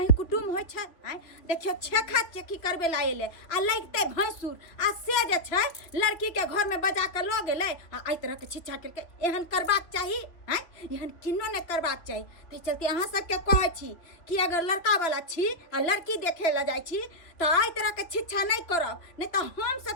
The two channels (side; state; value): right; late; 2.7 ms